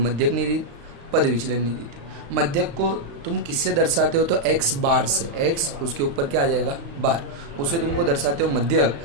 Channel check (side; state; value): left; late; 35 ms